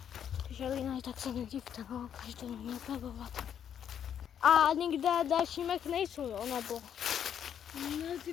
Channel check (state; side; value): quieter; right; 8.9 dB